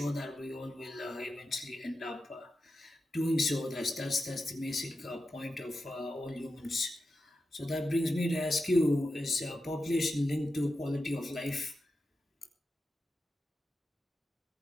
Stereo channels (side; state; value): both; normal; correlation 0.90